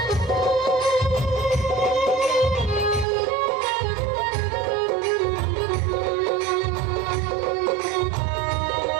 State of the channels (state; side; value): drops out; left; at 3.1 s